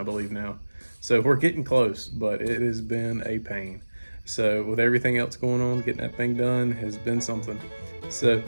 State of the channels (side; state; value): both; inverted; correlation -1.00